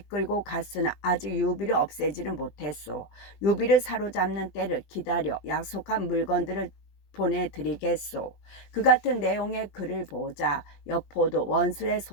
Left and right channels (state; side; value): late; right; 20 ms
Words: 갔으나 아직 유비를 없애지는 못했소. 유비를 사로잡는 때를 기다려 약속한 물건들을 보내드리겠소. 그 같은 내용의 글을 보자 여포도 원술의